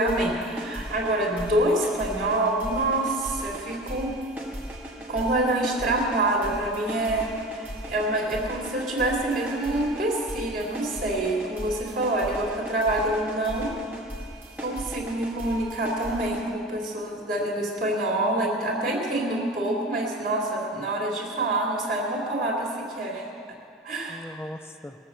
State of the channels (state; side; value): normal; both; correlation 0.34